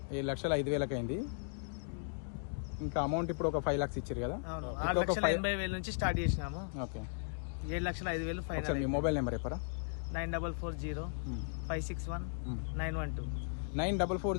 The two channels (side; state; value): right; silent; digital silence